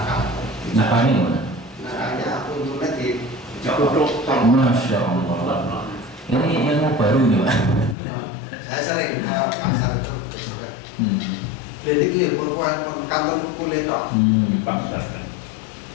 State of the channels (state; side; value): drops out; right; at 8.0 s